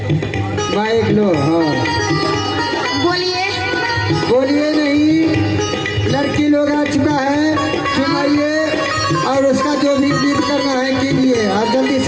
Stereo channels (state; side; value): identical; both; correlation 1.00